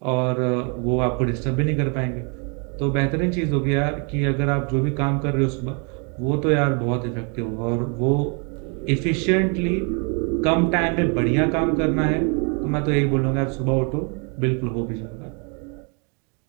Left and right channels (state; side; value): quieter; left; 36.2 dB